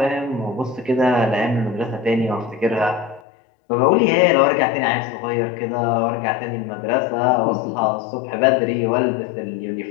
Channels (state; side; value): drops out; right; at 3.2 s